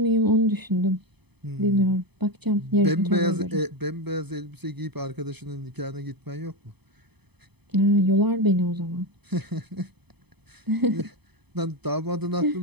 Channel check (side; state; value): left; late; 0.98 ms